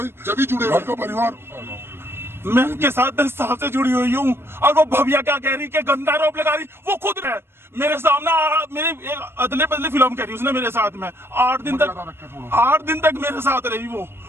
जब भी जुड़े घर का परिवार। मैं उनके साथ 10 साल से जुड़ी हुई हूँ, और वो भव्या क्या कह रही कि गंदा आरोप लगा रही, वो खुद है मेरे सामने, मेरी एक अदले बदले फिल्म कह रही उसने मेरे साथ में 8 दिन तक मेरे साथ रही।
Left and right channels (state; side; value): late; left; 0.12 ms